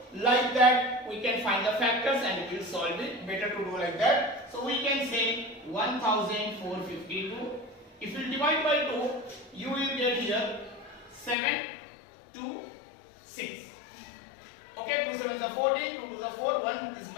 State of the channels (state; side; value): drops out; right; at 11.4 s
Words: like that we can find the factors and we will solve it. Better to do like that. So we can say 1452. If you divide by 2, you will get here 7 2 6. Okay, 2 7s are 14, 2 2s are 4, 1 is